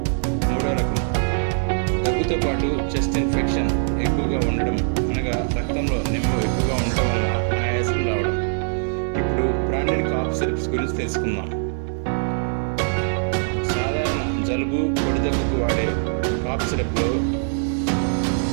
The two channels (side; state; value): left; silent; digital silence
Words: 3వ రకం దగ్గుతో పాటు చెస్ట్ ఇన్ఫెక్షన్ ఎక్కువగా ఉండడం, అనగా రక్తంలో నిమ్మ ఎక్కువగా ఉండటం వల్ల ఆయాసం రావడం. ఇప్పుడు బ్రాండెడ్ కాఫ్ సిరప్స్ గురించి తెలుసుకుందాం. సాధారణ జలుబు, పొడి దగ్గుకు వాడే కాఫ్ సిరప్లో